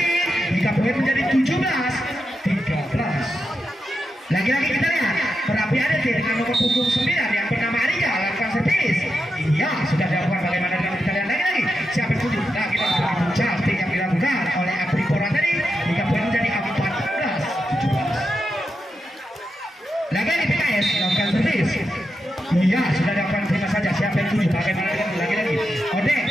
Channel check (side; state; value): both; normal; correlation 0.87